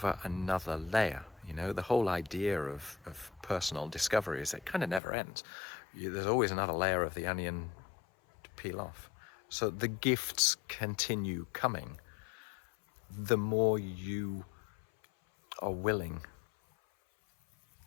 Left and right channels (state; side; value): drops out; right; at 5.0 s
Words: another layer. You know, the whole idea of personal discovery is it kind of never ends. There's always another layer of the onion to peel off. So the gifts continue coming the more you are willing